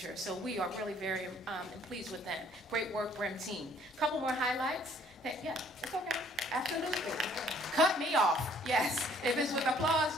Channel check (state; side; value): normal; both; correlation 0.60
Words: So we are really very pleased with them. Great work, Brim team. Couple more highlights. Yeah, it's okay. Absolutely. Cut me off. Yes. If it's with applause,